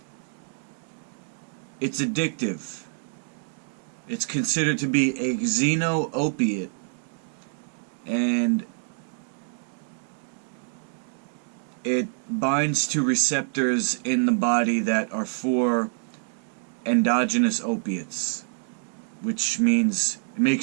it's addictive. It's considered to be a xeno-opiate. And it binds to receptors in the body that are for endogenous opiates, which means it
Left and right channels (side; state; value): left; silent; digital silence